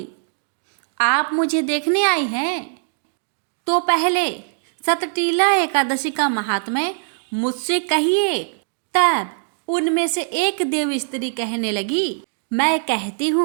आप मुझे देखने आई हैं? तो पहले सतटीला एकादशी का महात्म्य मुझसे कहिए। तब उनमें से एक देव स्त्री कहने लगी, मैं कहती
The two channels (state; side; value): silent; left; digital silence